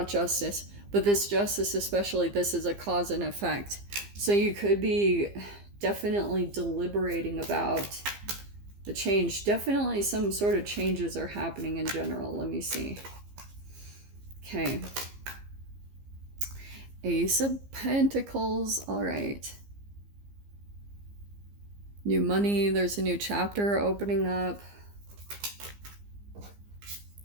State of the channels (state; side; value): late; left; 15 ms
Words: Justice. But this Justice especially, this is a cause and effect. So you could be definitely deliberating about the change. Definitely some sort of changes are happening in general. Let me see. Okay. Ace of Pentacles. All right. New money. There's a new chapter opening up.